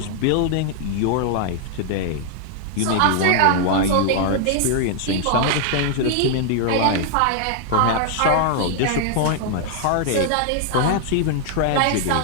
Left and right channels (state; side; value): different; both; correlation 0.00